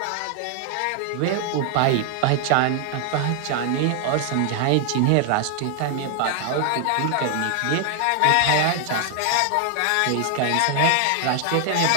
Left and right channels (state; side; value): different; both; correlation 0.00